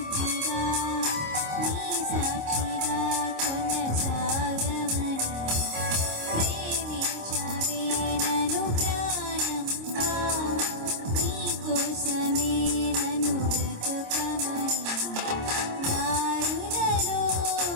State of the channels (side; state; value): left; late; 26 ms